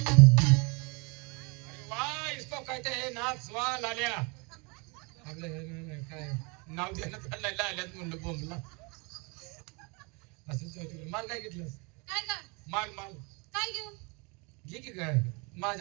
वाह इसको कहते हैं नाच वा लाल्या आपलं काय नाव देण्यात आलेलं आल्यात म्हणलं बोंबला असं चौथी माल काय घेतलंस काय का माल माल काय घेऊ घे की काय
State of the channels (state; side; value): quieter; left; 30.5 dB